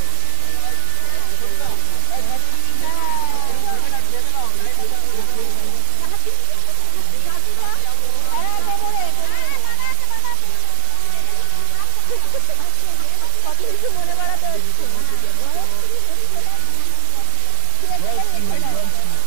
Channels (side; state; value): both; different; correlation 0.00